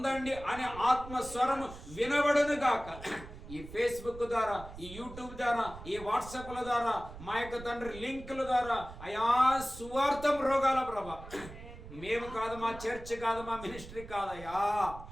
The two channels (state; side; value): noise; right; rumble, 14 dB below the sound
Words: అనే ఆత్మ స్వరము వినబడును గాక. ఈ ఫేస్బుక్ ద్వారా, ఈ యూట్యూబ్ ద్వారా, ఈ వాట్సాప్ల ద్వారా, మా యొక్క తండ్రి లింకుల ద్వారా అయా సువార్థం రోగాల ప్రభా. మేము కాదు, మా చర్చ్ కాదు, మా మినిస్ట్రీ కాదయ్యా,